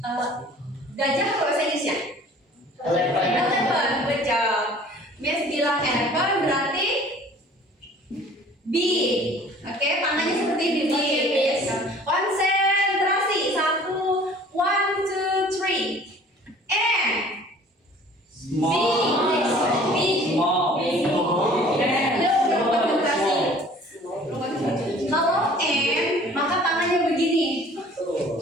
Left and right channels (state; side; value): normal; both; correlation 0.50